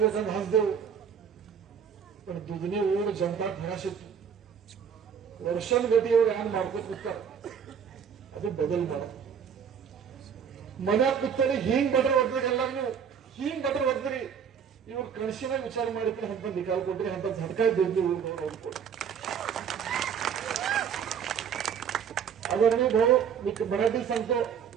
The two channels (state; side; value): quieter; left; 7.4 dB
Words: ಹಚ್ದೇವು. पण दुधनी ऊर जनता घराशिತ್ತು ವರ್ಷಗತಿ ಇವ್ರು ಹ್ಯಾಂಗ್ ಮಾಡ್ಕೊತ ಕೂತಾರ. ಅದು ಬದಲ್ ಮಾಡ ಮನ್ಯಾಗ ಕೂತಾರೆ ಹಿಂಗ್ ಬಟ್ರ ಹೊಡ್ದ್ರಿ ಎಲ್ಲಾರು ನೀವು ಹಿಂಗ್ ಬಟ್ರ ಹೊಡ್ದ್ರಿ ಇವ್ರು ಕಣಸಿನಾಗ ವಿಚಾರ ಮಾಡಿದ್ರೆ ಅಂತ ನಿಕಾಲ್ ಕೊಟ್ರಿ ಅಂತ झटका देतली ऊर आदरणीय भाऊ मी मराठी सांगतो.